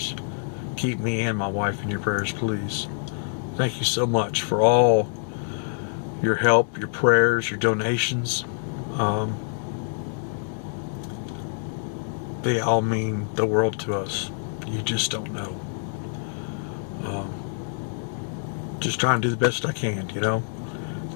Keep me and my wife in your prayers, please. Thank you so much for all your help, your prayers, your donations. They all mean the world to us. You just don't know. Just trying to do the best I can, you know. At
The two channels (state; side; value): silent; right; 61 dB below the other